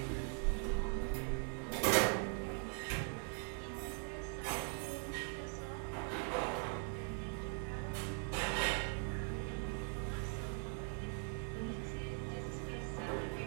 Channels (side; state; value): left; quieter; 39.6 dB